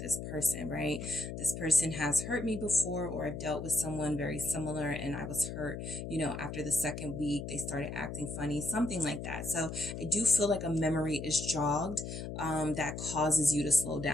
this person, right? This person has hurt me before, or I've dealt with someone very similar and I was hurt, after the 2nd week, they started acting funny, something like that. So I do feel like a memory is jogged that causes you to slow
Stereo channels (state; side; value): noise; left; hum, 7 dB below the sound